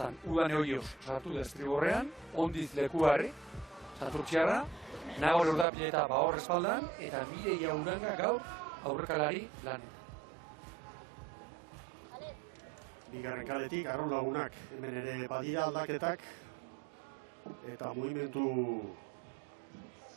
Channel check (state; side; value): drops out; left; at 5.7 s